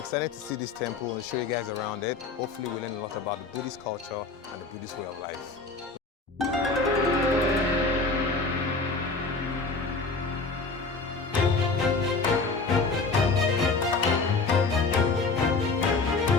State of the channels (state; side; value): quieter; right; 4.0 dB